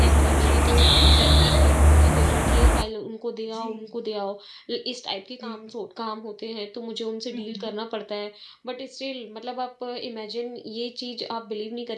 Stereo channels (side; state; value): both; identical; correlation 1.00